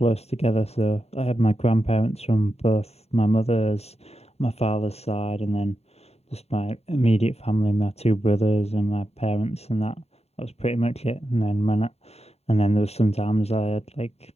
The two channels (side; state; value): right; late; 0.30 ms